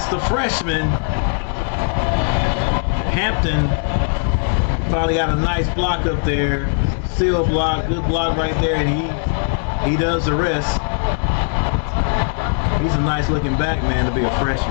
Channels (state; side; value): silent; right; digital silence